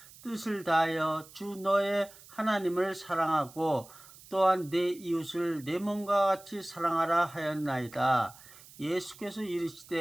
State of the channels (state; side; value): noise; right; hiss, 21 dB below the sound